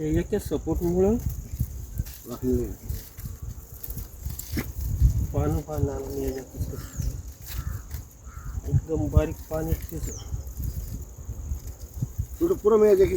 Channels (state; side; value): identical; both; correlation 1.00